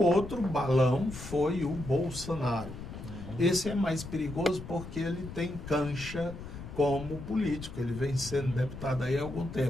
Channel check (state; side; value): noise; left; rumble, 11 dB below the sound